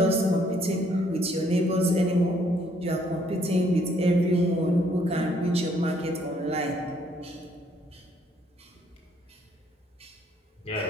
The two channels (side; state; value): both; normal; correlation 0.67